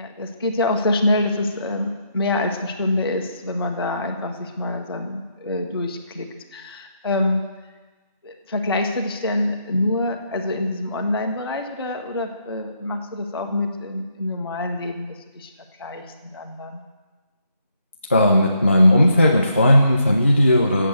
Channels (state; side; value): inverted; both; correlation -0.76